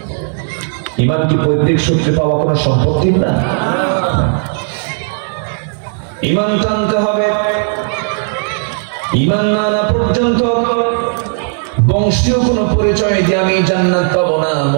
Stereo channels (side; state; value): left; silent; 57 dB below the other